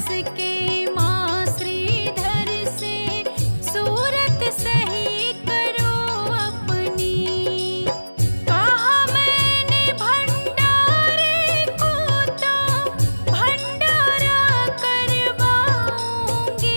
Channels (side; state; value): both; inverted; correlation -1.00